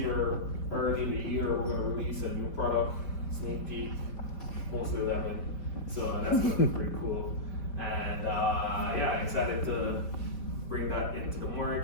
early in the year, we're going to release a new product. Sneak peek, mostly lemon, so that's gonna be pretty cool. And yeah, excited to bring that into the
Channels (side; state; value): right; late; 4.7 ms